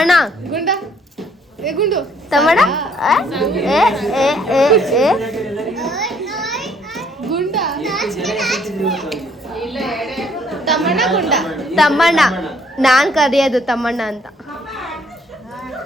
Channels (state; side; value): normal; both; correlation 0.64